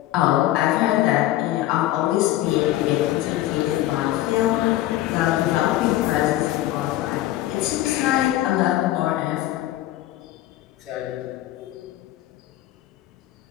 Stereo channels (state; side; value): quieter; right; 14.8 dB